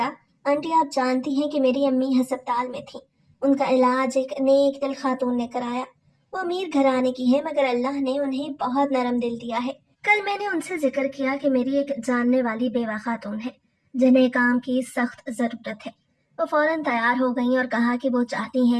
आंटी, आप जानती हैं कि मेरी अम्मी हस्पताल में थी। उनका इलाज एक नेक दिल खातून ने कराया। वो अमीर घराने की है, मगर अल्लाह ने उन्हें बहुत नरम दिल दिया है। कल मैंने उनसे जिक्र किया कि मेरी एक जानने वाली बेवा खातून है जिन्हें काम की सख्त जरूरत है। वो फौरन तैयार हो गई और कहा कि वो चाहती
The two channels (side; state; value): both; identical; correlation 1.00